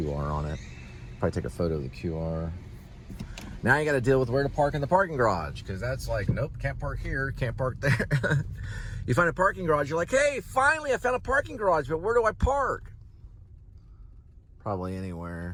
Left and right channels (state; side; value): identical; both; correlation 1.00